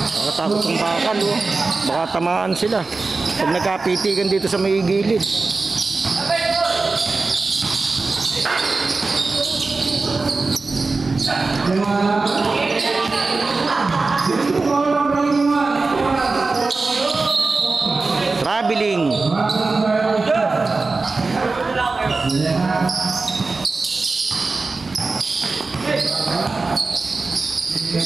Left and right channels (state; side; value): quieter; left; 3.8 dB